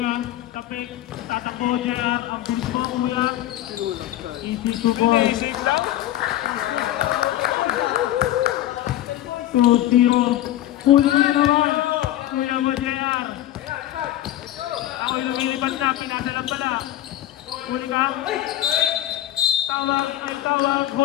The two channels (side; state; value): right; quieter; 13.5 dB